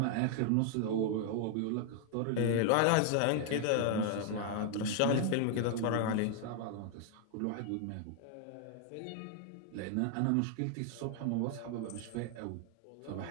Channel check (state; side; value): different; both; correlation 0.00